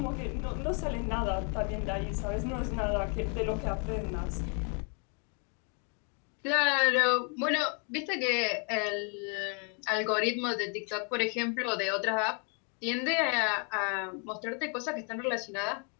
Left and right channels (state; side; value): quieter; right; 39.0 dB